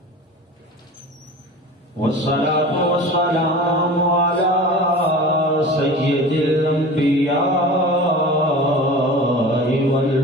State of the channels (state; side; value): normal; both; correlation 0.36